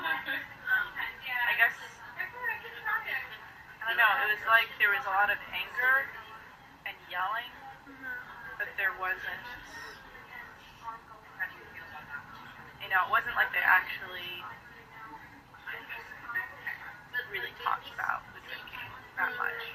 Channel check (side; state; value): both; identical; correlation 1.00